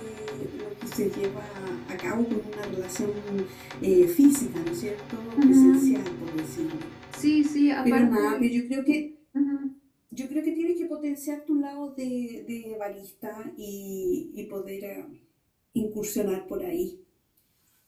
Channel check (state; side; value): identical; both; correlation 1.00